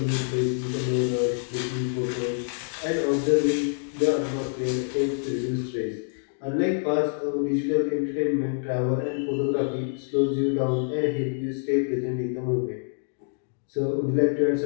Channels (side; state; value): right; silent; digital silence